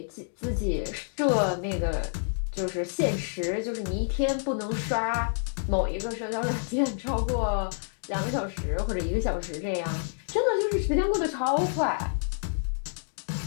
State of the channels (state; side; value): silent; right; digital silence